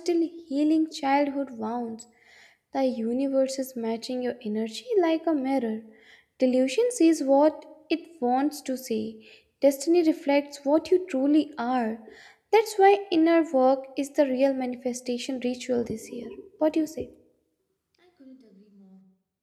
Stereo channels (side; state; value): both; identical; correlation 1.00